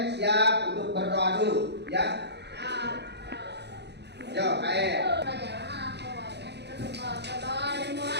siap untuk berdoa dulu, ya? Yo, KM.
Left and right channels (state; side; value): late; left; 0.49 ms